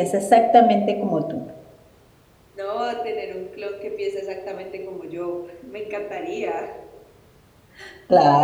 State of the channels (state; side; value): identical; both; correlation 1.00